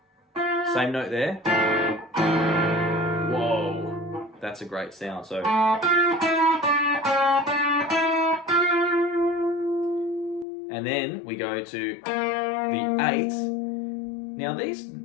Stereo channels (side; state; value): right; drops out; at 10.5 s